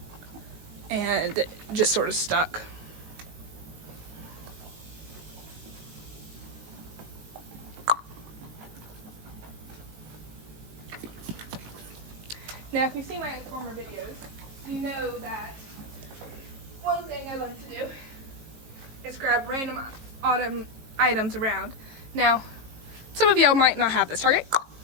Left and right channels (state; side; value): late; left; 18 ms